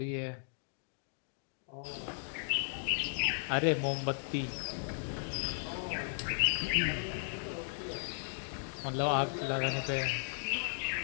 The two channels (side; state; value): right; silent; digital silence